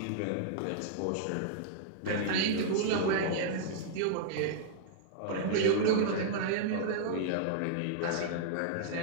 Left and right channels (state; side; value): different; both; correlation -0.01